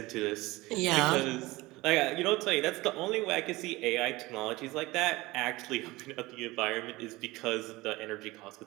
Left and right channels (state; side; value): quieter; left; 20.7 dB